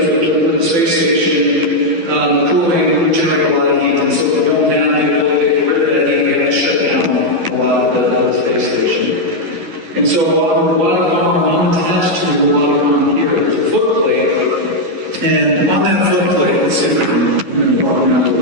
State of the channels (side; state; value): left; late; 12 ms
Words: with the space station, the cooling we generate a lot of heat, and so if we don't have the ability to get rid of that heat, we have to shut down a lot of the space station. And so on the robotic arm, I'm attached to the robotic arm here. There's a foot plate, and on that foot plate, let's see if I can, I'm going to walk around with